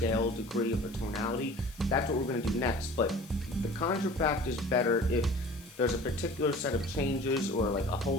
degree of a tonality, that's what we're going to do next. But the contrafact is better if there's a particular set of changes or a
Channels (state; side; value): noise; left; hiss, 21 dB below the sound